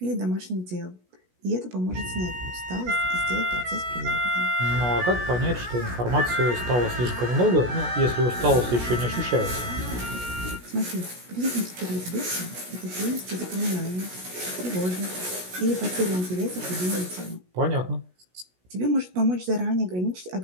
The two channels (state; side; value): late; left; 16 ms